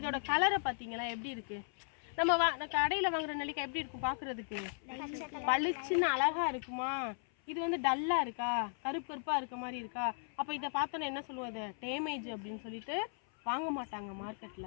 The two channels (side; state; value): right; silent; 53 dB below the other